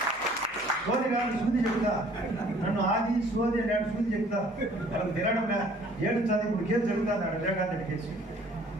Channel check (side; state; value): both; normal; correlation 0.56